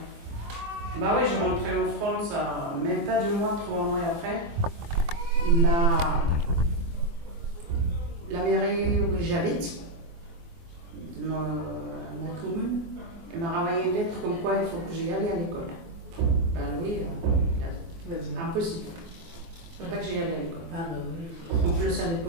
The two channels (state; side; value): late; left; 24 ms